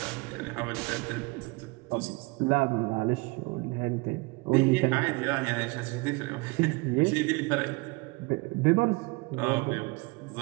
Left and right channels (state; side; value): quieter; left; 26.8 dB